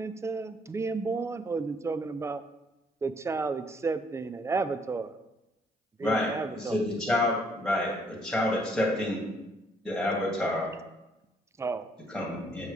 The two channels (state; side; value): normal; both; correlation 0.67